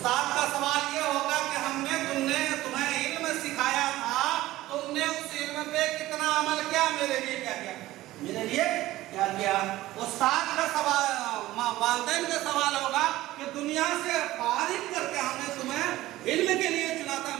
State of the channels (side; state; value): left; quieter; 16.5 dB